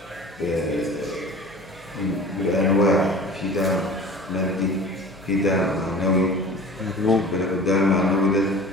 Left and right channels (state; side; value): normal; both; correlation 0.41